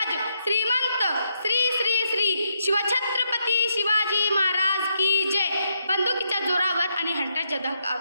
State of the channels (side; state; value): both; inverted; correlation -0.78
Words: श्रीमंत, श्री श्री श्री शिवछत्रपती शिवाजी महाराज की जय. बंदुकीच्या जोरावर आणि हंटरच्या धाकावर,